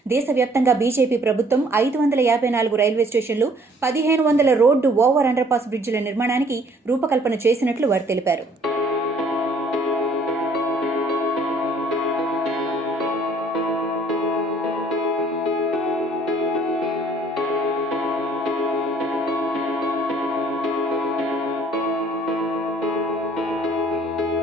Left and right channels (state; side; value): normal; both; correlation 0.59